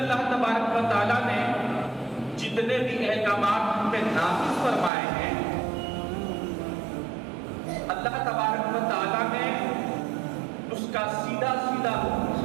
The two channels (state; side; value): drops out; left; at 4.9 s